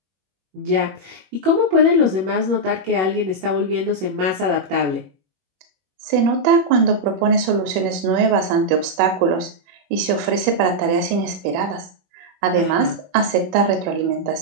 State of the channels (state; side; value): late; left; 21 ms